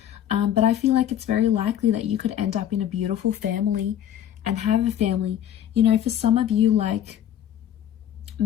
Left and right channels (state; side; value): quieter; right; 10.4 dB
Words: But I feel like it's very likely that you could end up in a beautiful family and have a family. You know, for some of you, like